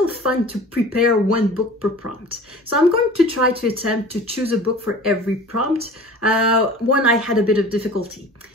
fun to prepare 1 book per prompt. So I'm going to try to attempt to choose a book for every prompt. One I had a bit of difficulty.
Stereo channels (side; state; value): both; normal; correlation 0.42